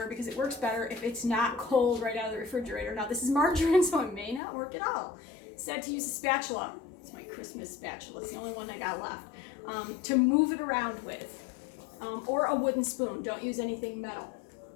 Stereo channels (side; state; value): right; drops out; at 4.4 s